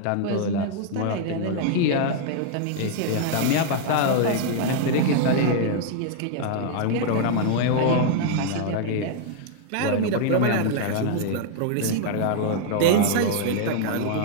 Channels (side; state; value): both; different; correlation 0.00